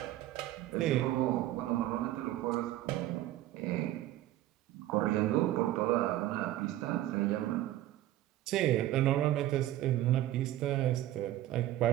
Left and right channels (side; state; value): left; quieter; 14.3 dB